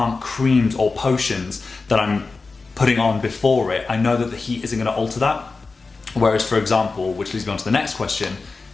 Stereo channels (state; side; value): quieter; right; 4.0 dB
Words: creams or potions that I'm putting on before it, I know that the heat isn't going to alter that. Whereas, for example, which leads me on to the next question,